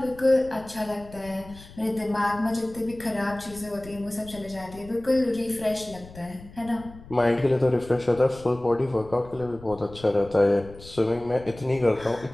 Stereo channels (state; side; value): noise; left; rumble, 18 dB below the sound